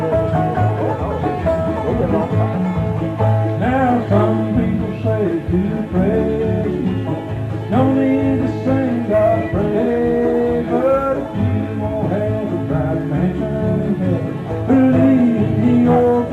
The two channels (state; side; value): identical; both; correlation 1.00